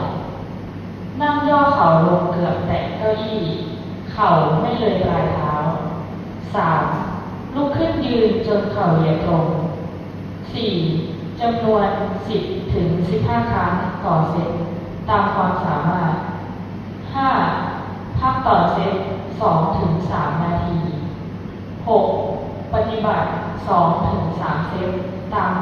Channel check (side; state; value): both; identical; correlation 1.00